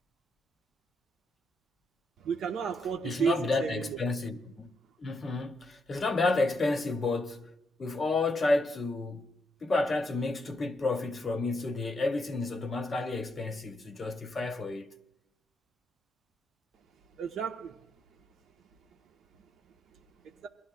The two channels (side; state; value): both; normal; correlation 0.79